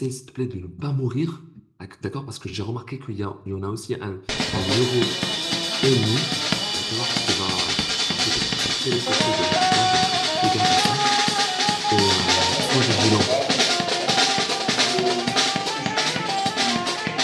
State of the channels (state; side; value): identical; both; correlation 1.00